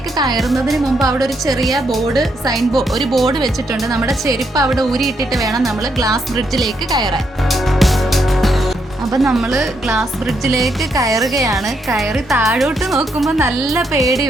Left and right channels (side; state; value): both; normal; correlation 0.77